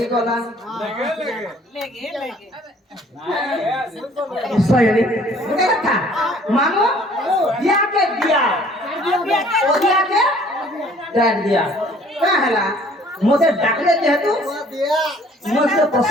গলা সয়ানি গুটে কথা মামু দিয়াকে দিয়া ও দিয়াকে ডাক দিয়া কা হেলা মতে ডাকলে যেহেতু মতে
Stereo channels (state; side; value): normal; both; correlation 0.56